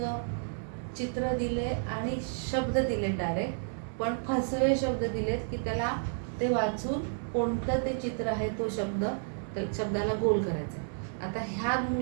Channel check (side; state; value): left; silent; digital silence